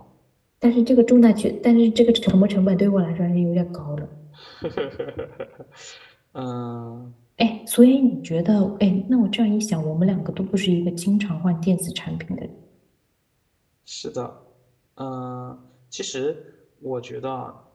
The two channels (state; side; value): identical; both; correlation 1.00